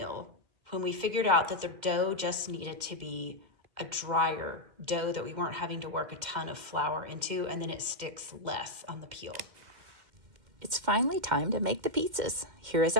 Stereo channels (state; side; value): late; left; 2.1 ms